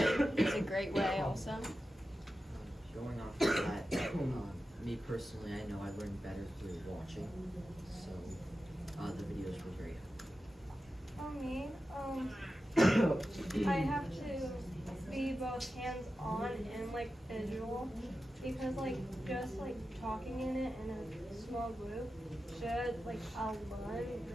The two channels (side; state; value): both; normal; correlation 0.92